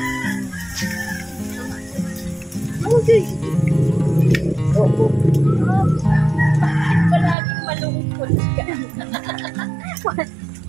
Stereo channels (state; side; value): drops out; left; at 7.4 s